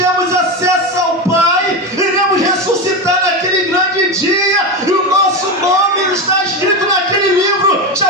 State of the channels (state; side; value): normal; both; correlation 0.17